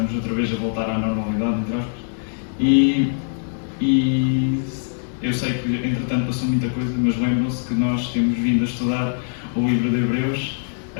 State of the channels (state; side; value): silent; right; digital silence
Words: outra vez a voltar à normalidade, entre aspas. E eu sei que, entretanto, passou muita coisa, mas lembram-se que nós temos vindo a estudar o livro de Hebreus